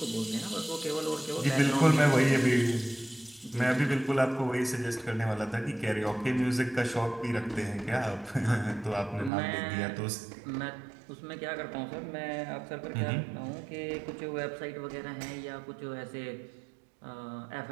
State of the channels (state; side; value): drops out; left; at 9.3 s